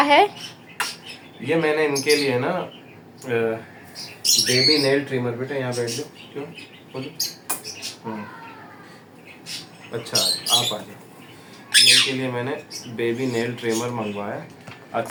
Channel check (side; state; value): both; identical; correlation 1.00